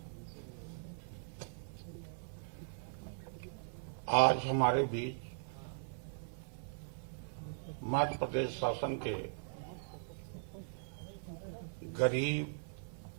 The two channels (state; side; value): silent; left; 51 dB below the other